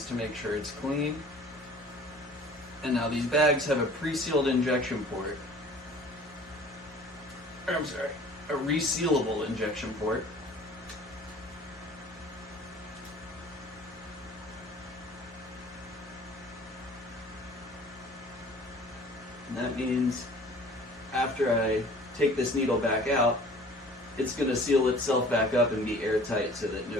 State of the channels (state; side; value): normal; both; correlation 0.48